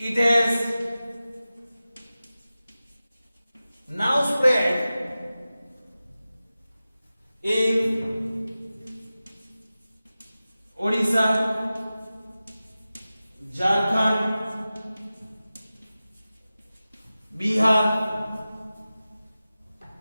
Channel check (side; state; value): both; inverted; correlation -0.96